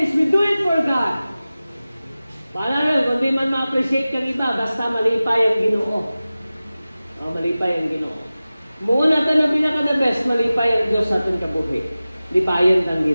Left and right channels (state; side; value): inverted; both; correlation -0.96